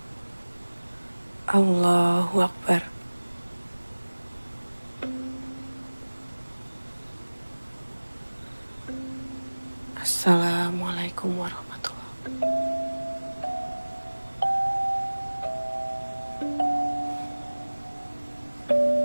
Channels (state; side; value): inverted; both; correlation -1.00